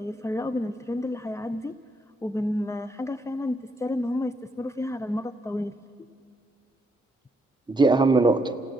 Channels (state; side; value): normal; both; correlation 0.76